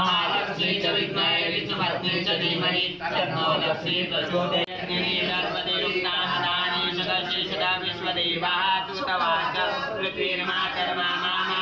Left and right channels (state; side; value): identical; both; correlation 1.00